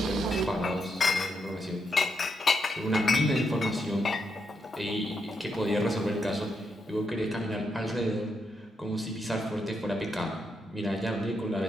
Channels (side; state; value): both; normal; correlation 0.81